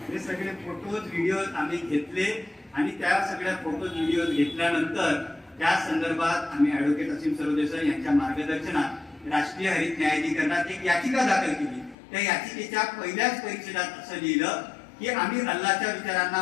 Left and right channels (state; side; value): drops out; right; at 12.0 s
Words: हे सगळे फोटोज व्हिडिओज आम्ही घेतले आणि त्या सगळ्या फोटोज व्हिडिओज घेतल्यानंतर त्या संदर्भात आम्ही ऍडव्होकेट असीम सरोदे सर यांच्या मार्गदर्शनात राष्ट्रीय हरित न्यायाधिकरणात एक याचिका दाखल केली। त्या याचिकेच्या पहिल्याच परिच्छेदात असं लिहिलं की आम्ही अल्लाच्या